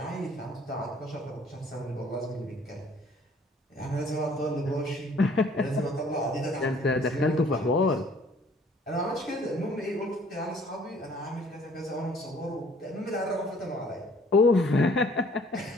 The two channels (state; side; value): normal; both; correlation 0.57